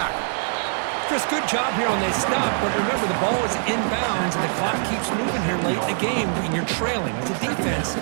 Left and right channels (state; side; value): silent; left; 63 dB below the other